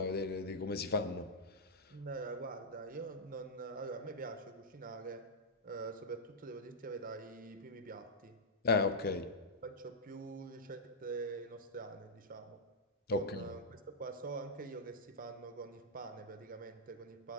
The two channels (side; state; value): both; normal; correlation -0.10